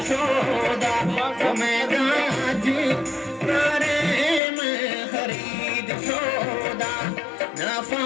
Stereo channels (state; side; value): drops out; right; at 4.4 s